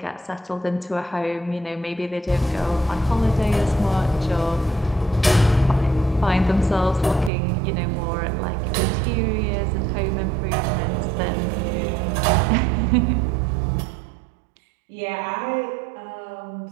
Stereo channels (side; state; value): left; drops out; at 7.3 s